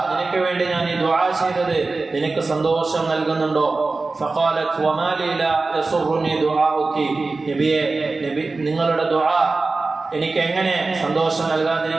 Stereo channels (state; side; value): quieter; left; 3.7 dB